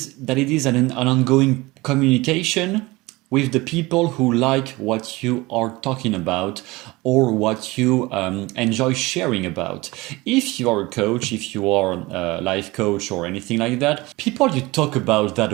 that it is an ongoing communication with the people who like what you are talking about or what you enjoy sharing about. If you are a coach, if you are a life coach or anything like that, people you talk about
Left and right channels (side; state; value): left; quieter; 21.7 dB